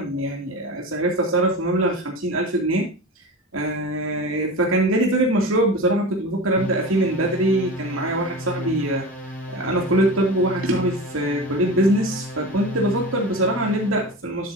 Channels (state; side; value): normal; both; correlation 0.30